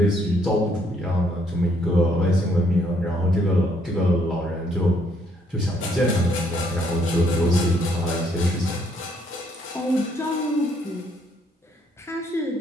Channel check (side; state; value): both; normal; correlation 0.69